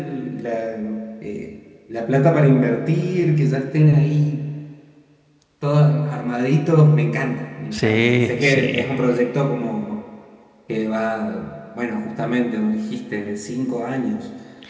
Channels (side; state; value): both; identical; correlation 1.00